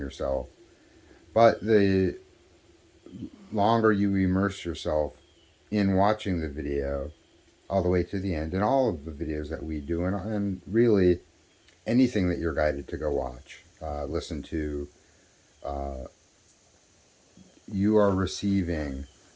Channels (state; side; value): identical; both; correlation 1.00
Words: But the longer you immerse yourself in watching the video all the way to the end, and all of the videos that we do, and really anything that you're guided to go watch, listen to, you are receiving